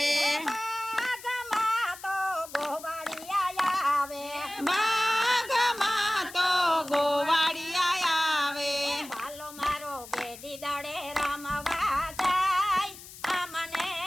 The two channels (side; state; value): left; noise; hiss, 16 dB below the sound